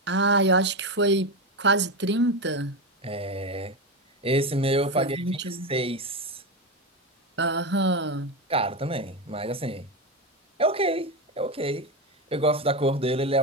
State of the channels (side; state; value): both; normal; correlation 0.15